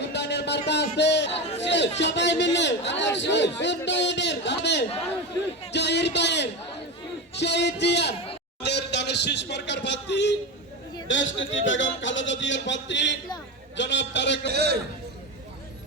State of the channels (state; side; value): normal; both; correlation 0.20